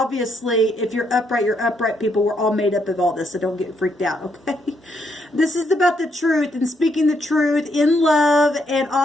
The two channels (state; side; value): normal; both; correlation 0.75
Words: if you're upright people. We're all made up of all this, so don't get freaked out, okay? This is about the truth and speaking the truth in love, and